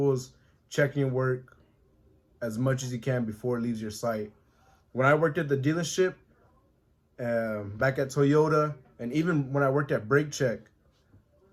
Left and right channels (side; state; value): both; identical; correlation 1.00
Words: as checking your work as much as you can before it leaves your site. When I worked at the dealership, back at Toyota, and even when I worked at Brake Check,